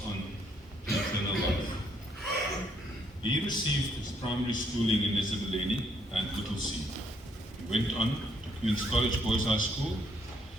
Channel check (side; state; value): both; normal; correlation 0.70